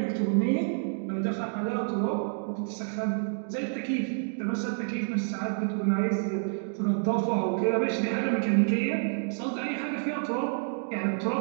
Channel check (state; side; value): silent; left; digital silence